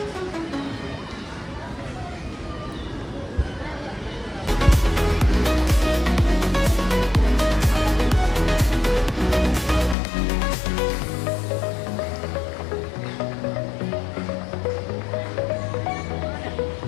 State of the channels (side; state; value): right; drops out; at 10.0 s